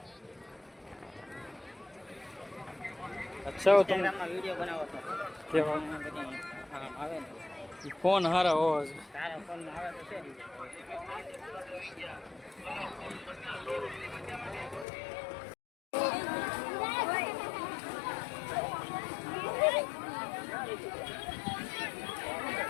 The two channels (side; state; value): right; drops out; at 14.9 s